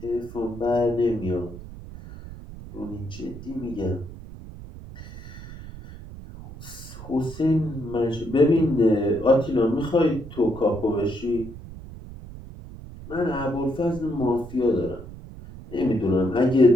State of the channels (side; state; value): right; noise; rumble, 14 dB below the sound